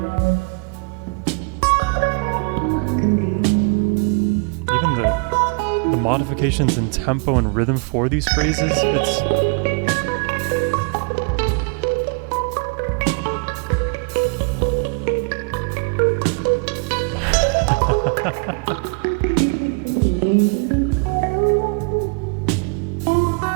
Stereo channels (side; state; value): left; quieter; 36.1 dB